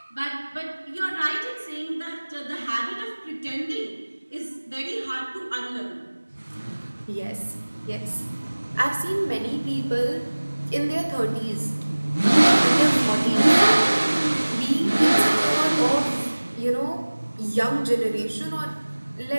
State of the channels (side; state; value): both; inverted; correlation -1.00